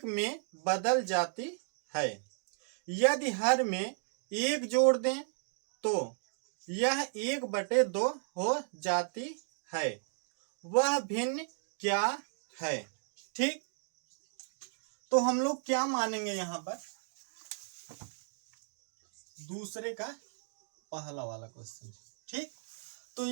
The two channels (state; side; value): silent; left; digital silence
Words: में बदल जाती है। यदि हर में एक जोड़ दें तो यह 1/2 हो जाती है। वह भिन्न क्या है? ठीक, तो हम लोग क्या मानेंगे यहाँ पर? दूसरे का पहला वाला क्वेश्चन। ठीक, तो